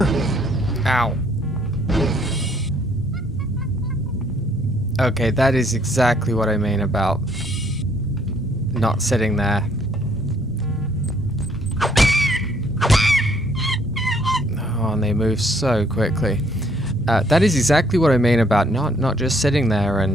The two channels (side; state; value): both; normal; correlation 0.65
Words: Ow. Okay, that is exactly what I mean about not sitting there. Oh, and they move so quickly. That is exactly what I mean about not just sitting there